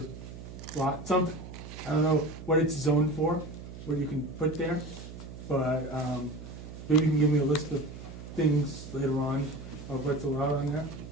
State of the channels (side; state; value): right; noise; hum, 12 dB below the sound